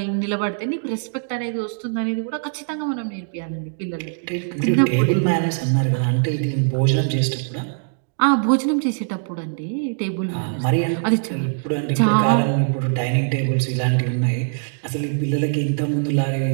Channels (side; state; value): left; silent; digital silence